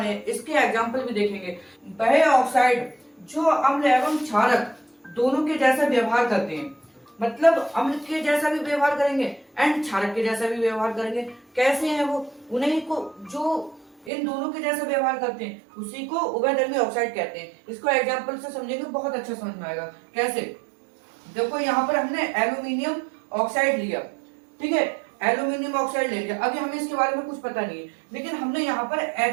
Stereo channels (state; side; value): drops out; left; at 14.1 s